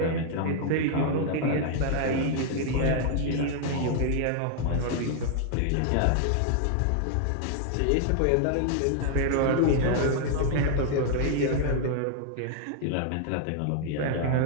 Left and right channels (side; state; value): both; different; correlation 0.00